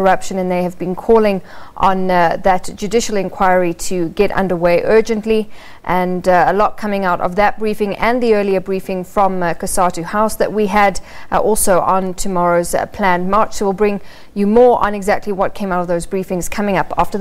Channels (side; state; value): both; identical; correlation 1.00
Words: and they have been calling on that judicial inquiry to get underway urgently. And a lot coming out of that briefing and the earlier briefing from Cosatu House that we had also on tomorrow's planned march. So we'll bring you more on exactly what came out of those briefings coming up after